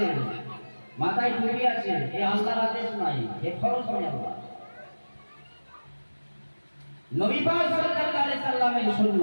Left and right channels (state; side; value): inverted; both; correlation -1.00